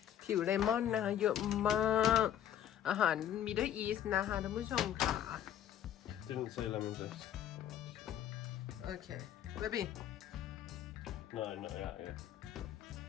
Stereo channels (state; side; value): quieter; right; 10.6 dB